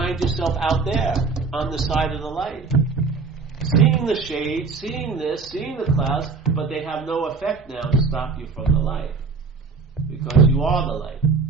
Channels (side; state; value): left; quieter; 4.6 dB